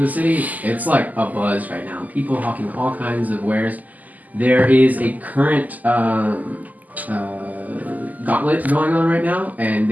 the city. It's like a buzz right now. People hawking all kinds of wares. There is a current gauntlet going on right now, and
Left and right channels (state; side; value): late; left; 0.080 ms